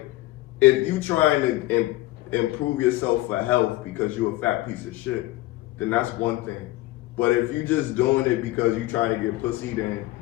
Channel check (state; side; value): quieter; right; 17.9 dB